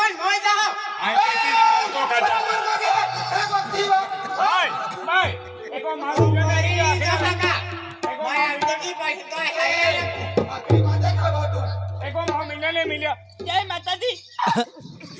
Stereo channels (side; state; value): both; identical; correlation 1.00